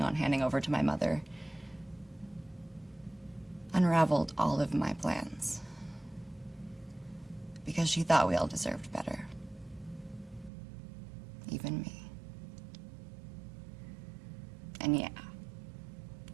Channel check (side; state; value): left; drops out; at 10.5 s